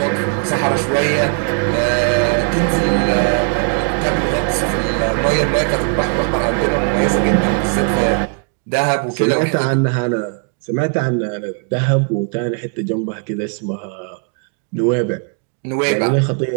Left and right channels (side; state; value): left; quieter; 38.3 dB